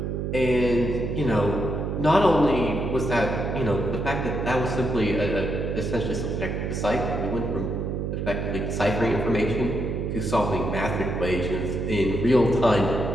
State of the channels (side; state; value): right; noise; hum, 2 dB below the sound